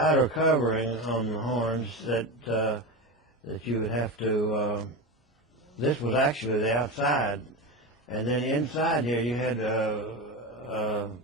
covering on the horns that you would have to, this was actually the outside, and then inside here you had a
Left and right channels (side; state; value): both; normal; correlation 0.21